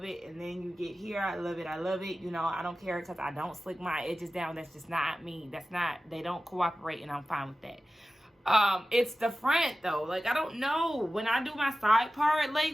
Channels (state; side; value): normal; both; correlation 0.95